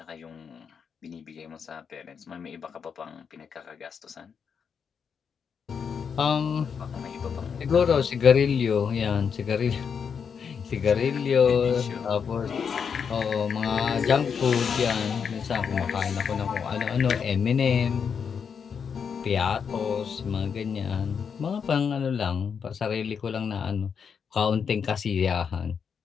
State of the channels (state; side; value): quieter; right; 6.7 dB